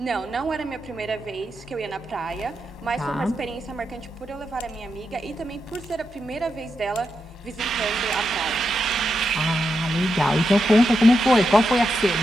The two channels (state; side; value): normal; both; correlation 0.86